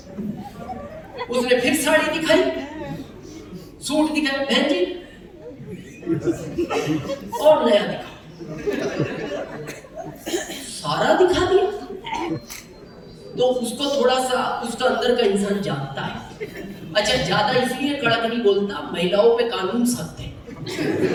उसने फिर साड़ी दिखाई, सूट दिखाया, बहन जी और नया दिखा, सारा दिखा दिया। तो उसको थोड़ा सा उसका अंदर का इंसान जानता है। अच्छा, ज्यादा इसलिए कड़क नहीं बोलता, महिलाओं पे कानून सख्त है।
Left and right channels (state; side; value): identical; both; correlation 1.00